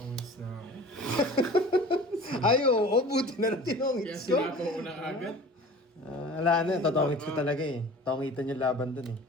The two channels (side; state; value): both; normal; correlation 0.42